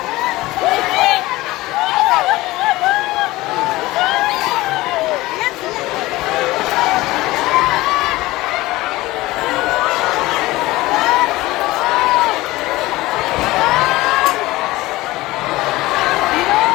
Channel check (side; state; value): right; quieter; 18.9 dB